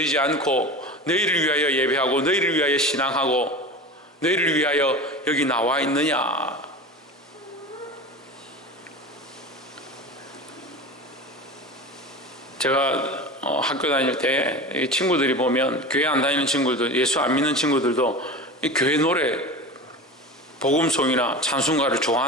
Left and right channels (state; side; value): normal; both; correlation 0.31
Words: 않고 너희를 위하여 예배하고 너희를 위하여 신앙하고 너희를 위하여 여기 나와 있느냐? 제가 학교 다닐 때 친구들이 보면 교회 안 다니는 친구들, 예수 안 믿는 친구들도 이 교회 노래, 복음송이나 찬송가를